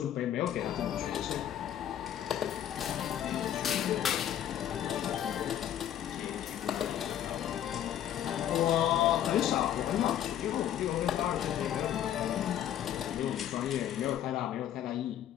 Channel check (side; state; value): right; quieter; 10.8 dB